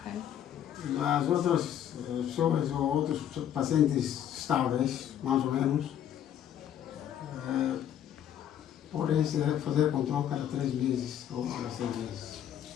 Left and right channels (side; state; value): right; quieter; 10.2 dB